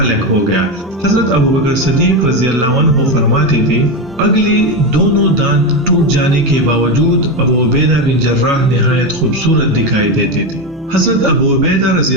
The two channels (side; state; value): both; normal; correlation 0.13